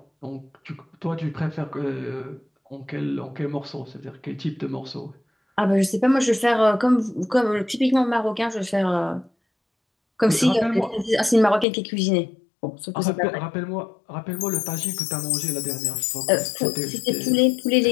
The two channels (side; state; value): right; drops out; at 11.7 s